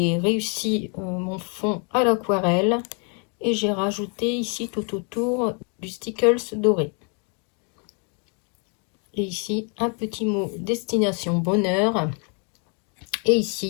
réussi mon fond à l'aquarelle. Et j'ai rajouté ici tout autour du stickles doré. Et ici, un petit mot destination bonheur. Et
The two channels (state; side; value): quieter; right; 37.9 dB